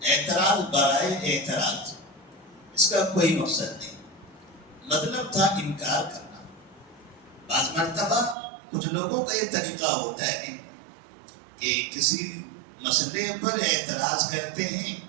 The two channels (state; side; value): drops out; left; at 8.3 s